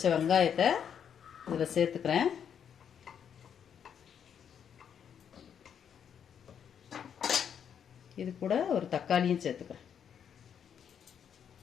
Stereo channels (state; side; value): quieter; right; 8.2 dB